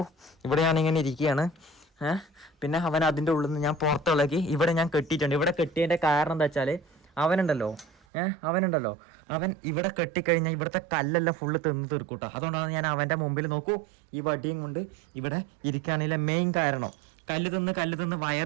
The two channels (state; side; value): drops out; left; at 7.9 s